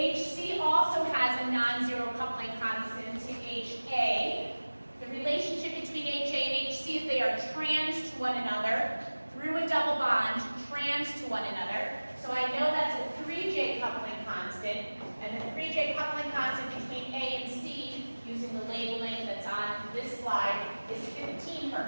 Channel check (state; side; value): inverted; both; correlation -1.00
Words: also has a non-zero coupling constant to HA. The relationship between HA and HC is they are trans to one another through a double bond, trans to one another. So I know that's a 3J coupling constant, and the 3J coupling constant between A and C, using the labeling that's on this slide, is 15